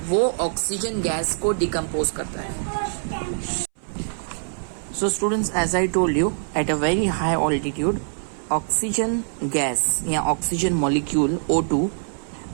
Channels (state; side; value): silent; left; 63 dB below the other